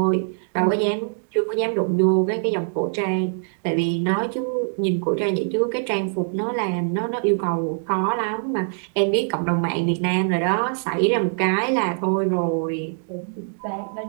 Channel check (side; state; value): left; silent; digital silence